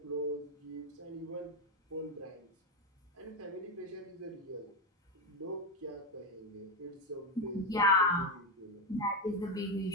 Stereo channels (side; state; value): both; normal; correlation 0.09